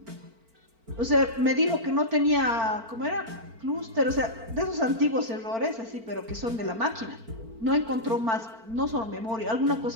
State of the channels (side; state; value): left; late; 4.4 ms